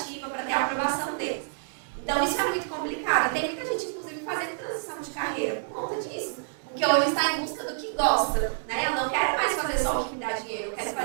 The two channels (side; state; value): left; silent; 59 dB below the other